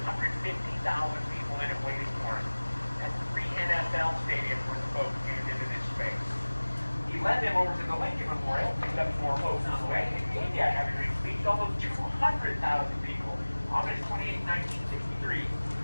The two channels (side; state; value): both; inverted; correlation -1.00